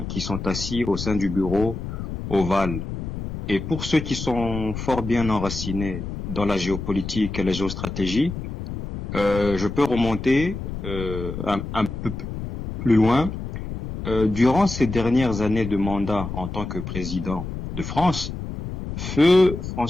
qui sont assis au sein du bureau ovale. Et pour ceux qui sont fort bien enracinés dans la géopolitique et la géostratégie, je peux remonter un peu plus loin. Durant ces dernières années de mandat en tant que président de France, Feu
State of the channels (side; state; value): left; noise; rumble, 7 dB below the sound